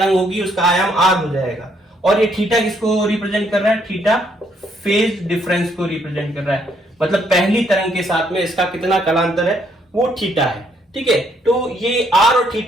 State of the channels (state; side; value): normal; both; correlation 0.70